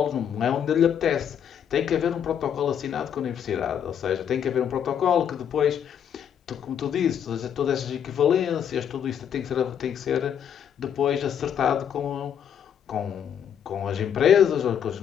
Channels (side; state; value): right; quieter; 8.7 dB